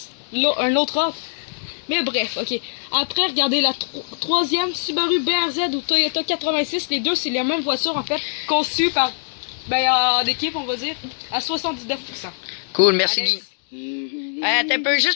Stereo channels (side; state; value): right; silent; digital silence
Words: Un autre offre. Mais bref, ok. Après, regardez la troisième Subaru BRZ ou Toyota 86. Les deux, c'est les mêmes voitures en fait, conçues par. En équipe, on va dire, à 79%. Cool, merci Alex. Guy. Attends un peu,